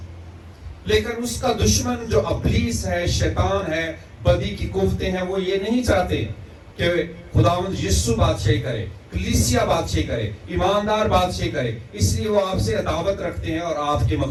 لیکن اس کا دشمن جو ابلیس ہے، شیطان ہے، بدی کی قوتیں ہیں، وہ یہ نہیں چاہتے کہ خداوند یسوع بادشاہی کرے، کلیسیا بادشاہی کرے، ایماندار بادشاہی کرے، اس لیے وہ آپ سے عداوت رکھتے ہیں اور آپ کے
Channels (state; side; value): identical; both; correlation 1.00